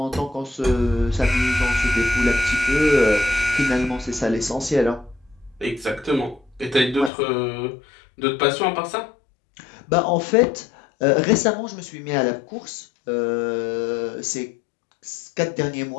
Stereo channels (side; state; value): right; drops out; at 7.1 s